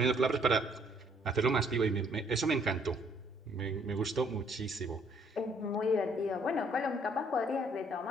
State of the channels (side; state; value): both; normal; correlation 0.64